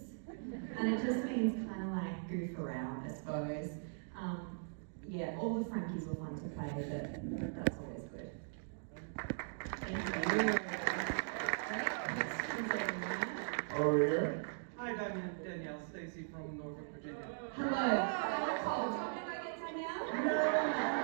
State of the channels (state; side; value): silent; left; digital silence